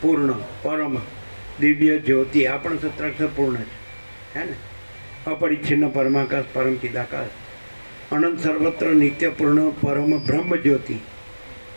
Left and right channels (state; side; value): inverted; both; correlation -1.00